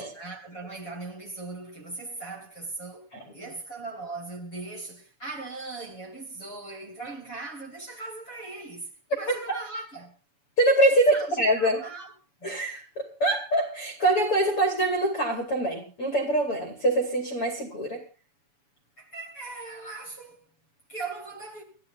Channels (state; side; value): late; right; 7.0 ms